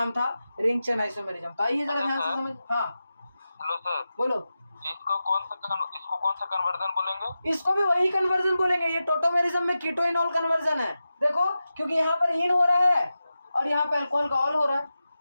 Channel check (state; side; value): inverted; both; correlation -0.93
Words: था? Ring chain isomerism. तो आइए जरा ध्यान से समझ। हाँ हेलो सर, बोलो। इसको कौन सा कन्वर्जन बोलेंगे? इसको भी वही कन्वर्जन बोलेंगे, ये टोटोमेरिज्म में कीटोइनॉल कन्वर्जन है। देखो क्योंकि यहाँ पर इन हो रहा है और यहाँ पर अल्कोहल का ऑल हो रहा है,